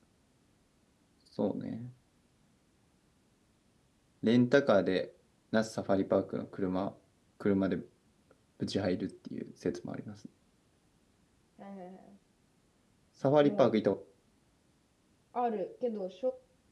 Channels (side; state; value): both; identical; correlation 1.00